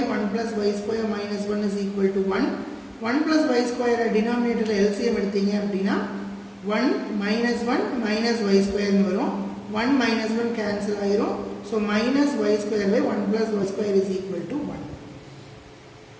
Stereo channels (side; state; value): both; identical; correlation 1.00